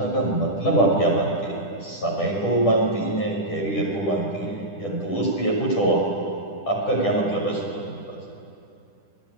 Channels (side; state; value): right; late; 10 ms